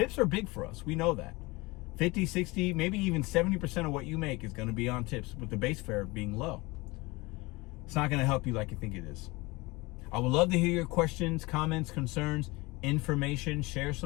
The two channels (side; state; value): right; quieter; 23.4 dB